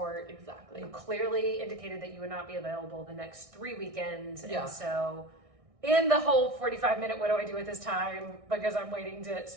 Exactly. You clearly indicated that you would not be available the next 3 weekends. Yeah. And so in the whole 45-minute, what do I do with this time? Because I'm waiting to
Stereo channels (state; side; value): late; left; 1.6 ms